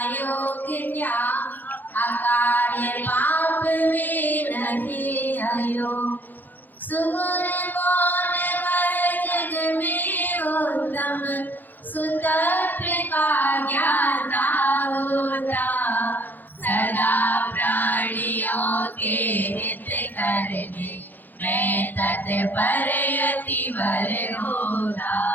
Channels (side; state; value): right; late; 0.087 ms